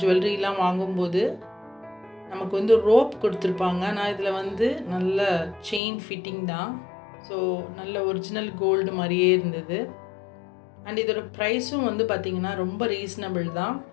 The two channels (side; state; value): right; drops out; at 5.8 s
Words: ஜுவல்லரிலாம் வாங்கும்போது நமக்கு வந்து ரோப் கொடுத்துருப்பாங்க. ஆனால் இதில் வந்து நல்ல செயின் ஃபிட்டிங் தான். ஸோ நல்ல ஒரிஜினல் கோல்டு மாதிரியே இருந்தது. அண்ட் இதோட ப்ரைஸும் வந்து பார்த்திங்கன்னா ரொம்ப ரீசனபிள் தான்,